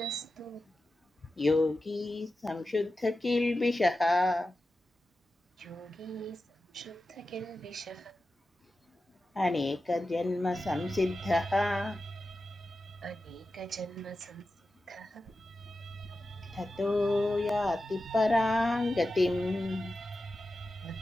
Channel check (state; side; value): normal; both; correlation 0.92